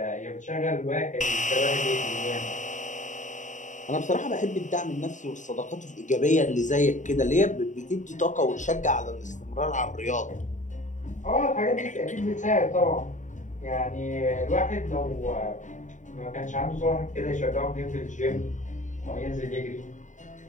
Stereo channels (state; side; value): late; right; 0.36 ms